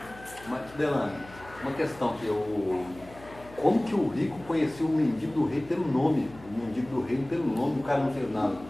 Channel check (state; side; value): noise; left; hum, 20 dB below the sound